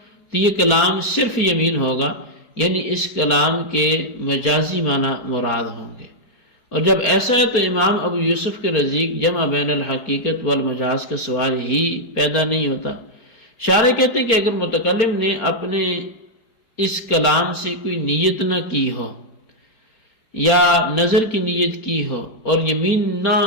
تو یہ کلام صرف یمین ہوگا، یعنی اس کلام کے مجازی معنی مراد ہوں گے۔ اور جب ایسا ہے تو امام ابو یوسف کے نزدیک جمع بین الحقیقت والمجاز کا سوال ہی پیدا نہیں ہوتا۔ شارح کہتے ہیں کہ اگر متکلم نے اپنے اس کلام سے کوئی نیت نہ کی ہو، یا نظر کی نیت کی ہو اور یمین نہ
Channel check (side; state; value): right; late; 4.8 ms